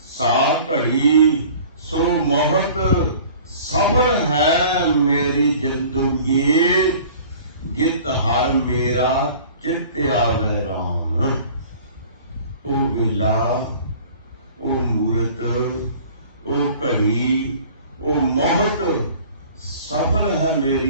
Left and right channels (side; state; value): both; inverted; correlation -0.47